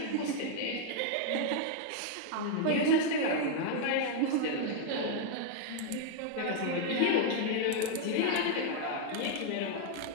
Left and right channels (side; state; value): both; different; correlation 0.00